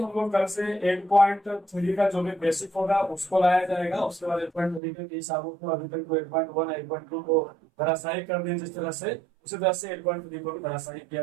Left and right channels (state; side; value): drops out; left; at 4.8 s